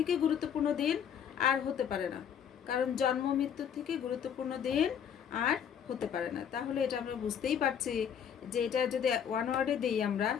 গুরুত্বপূর্ণ দিন আর হতে পারে না, কারণ জন্ম মৃত্যুর থেকে গুরুত্বপূর্ণ দিন আর হতে পারে না। তাহলে এটা আমরা বুঝতেই পারছি যে এটা যদি 1 ওয়ার্ডে দিই আমরা,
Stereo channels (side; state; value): right; quieter; 8.3 dB